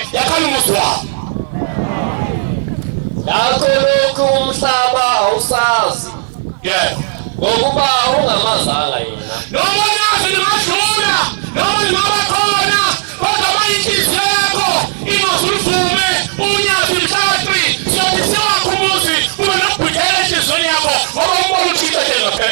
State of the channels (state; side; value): silent; left; digital silence